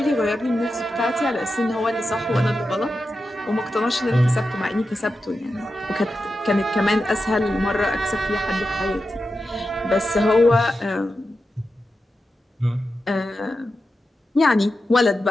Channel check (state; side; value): normal; both; correlation 0.90